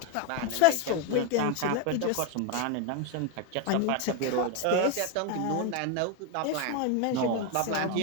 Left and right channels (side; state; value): both; different; correlation 0.02